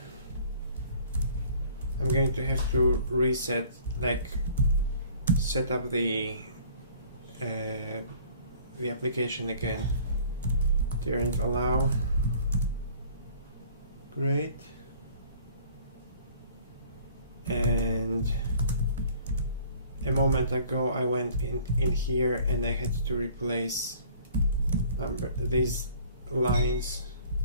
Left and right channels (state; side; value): inverted; both; correlation -0.52